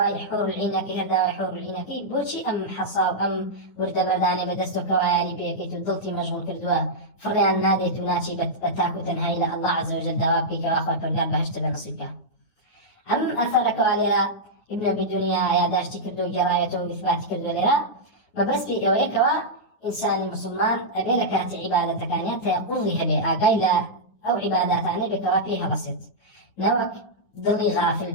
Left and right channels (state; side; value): late; right; 9.8 ms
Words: حور العينكي هرداوي حور العينكي بوشي أم حصاب أم ورد برداني بدستو كواياني بيكي تدلتي مشغول كردوا فريان نادي تناتي بتاكو تنهي إلى الله عز وجل دوابكي كواخوة فرقال بهشت بنصيبك أم أثر كواليرا ابن أبي الدنيا يا داشتي كردو جرايته وإثباتي كردو ليرا ما بس بي أوي كوا إنسان المسلمان أبي لكاتي عبادة كانيا تيقضيها بي أقايلا أو عباداتاني بكوا فيها بسيط نوك ضلي غافل